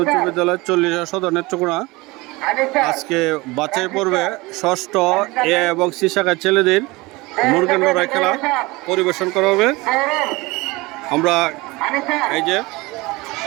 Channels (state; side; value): quieter; left; 22.6 dB